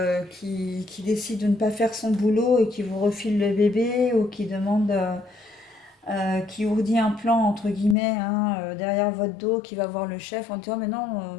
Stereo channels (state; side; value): drops out; right; at 8.0 s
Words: qui décide de ne pas faire son boulot et qui vous refile le bébé ou qui demande, qui ourdit un plan entre guillemets hein, derrière votre dos, qui va voir le chef en disant mais non,